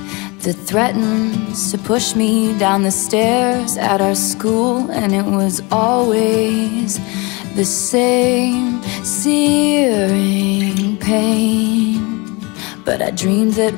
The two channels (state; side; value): quieter; right; 27.0 dB